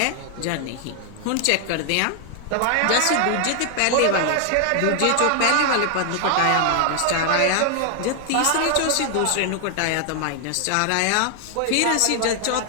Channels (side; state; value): both; different; correlation 0.00